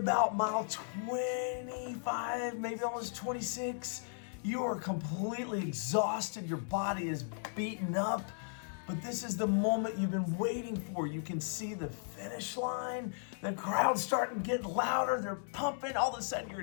mile 25, maybe almost 26. You are completely exhausted. Your body is beaten up. But this is the moment you've been waiting for. You can see the finish line. The crowd's starting to get louder. They're pumping. All of a sudden, your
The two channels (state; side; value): silent; right; 54 dB below the other